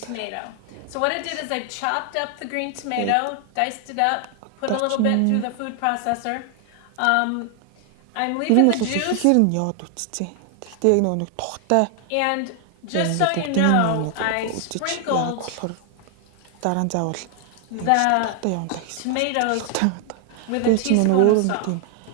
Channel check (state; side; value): different; both; correlation 0.00